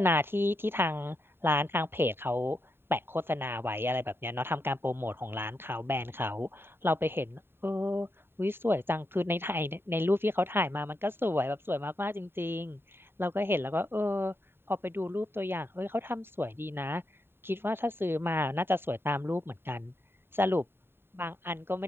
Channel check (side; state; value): left; late; 0.11 ms